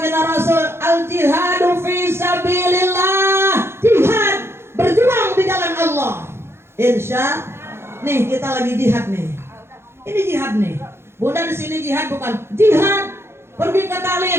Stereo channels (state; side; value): late; left; 0.12 ms